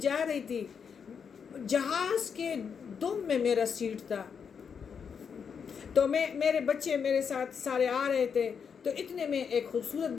جا رہی تھی، جہاز کے دم میں میرا سیٹ تھا، تو میرے بچے میرے ساتھ سارے آ رہے تھے، تو اتنے میں ایک خوبصورت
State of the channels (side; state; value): right; quieter; 6.6 dB